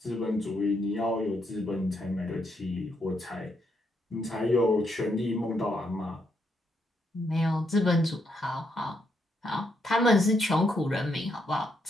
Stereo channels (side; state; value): both; normal; correlation 0.78